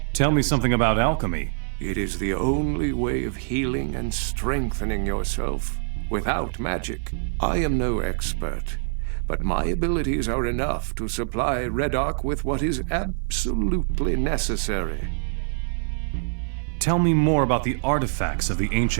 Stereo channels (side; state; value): left; silent; digital silence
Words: Tell me something about alchemy. It is the only way of healing and strengthening yourself without magic. I am no expert, but my abilities are enough to supply Reddock with what is absolutely necessary. Tell me more about the artifacts of the